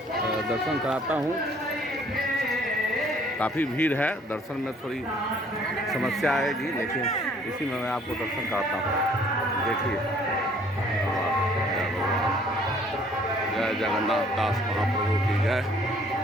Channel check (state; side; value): normal; both; correlation 0.59